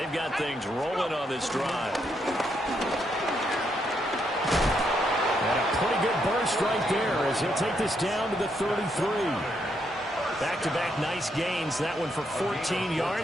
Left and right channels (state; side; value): normal; both; correlation 0.77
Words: got things rolling on this drive. And a pretty good burst right there as he'll take this down to the 33. Back-to-back nice gains. That one for 14